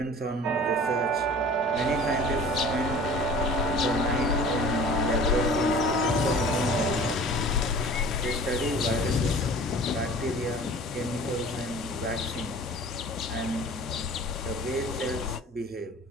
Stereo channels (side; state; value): both; normal; correlation 0.44